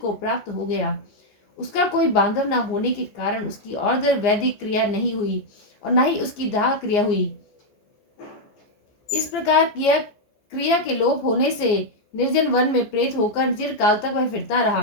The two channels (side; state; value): right; late; 15 ms